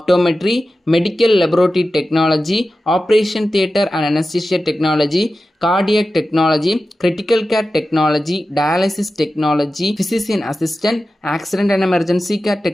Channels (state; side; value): normal; both; correlation 0.93